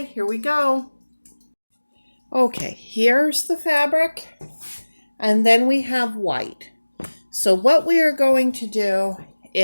here we go. Okay, here's the fabric. And then we have white. So what we are going to do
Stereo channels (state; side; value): inverted; both; correlation -1.00